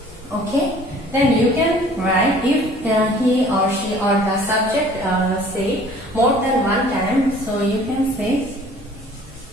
Okay, then you can write if he or she or the subject say more than one time, so you can say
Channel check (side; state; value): both; normal; correlation 0.52